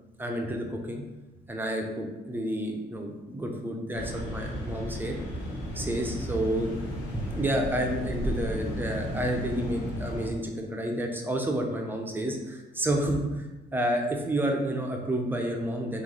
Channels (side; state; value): both; normal; correlation 0.67